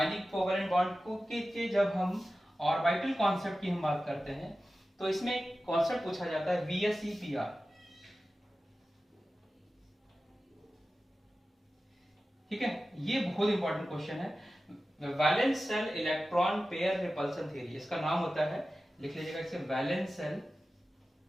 कोवेलेंट बॉन्ड को के जब हम ऑर्बिटल कॉन्सेप्ट की हम बात करते हैं, तो इसमें कॉन्सेप्ट पूछा जाता है VSEPR। ठीक है, ये बहुत इंपॉर्टेंट क्वेश्चन है। Valence shell electron pair repulsion theory इसका नाम होता है, लिख लीजिएगा इसे, valence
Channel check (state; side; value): normal; both; correlation 0.95